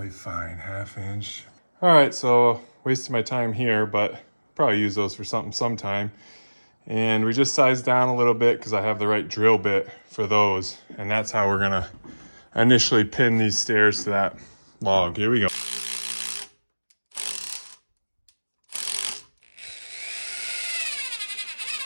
fine, 1/2 inch. All right, so wasted my time here, but probably use those for something sometime. And we just sized down a little bit because I have the right drill bit for those. And that's how we're gonna initially pin these stairs to that log. Here we go.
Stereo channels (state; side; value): inverted; both; correlation -1.00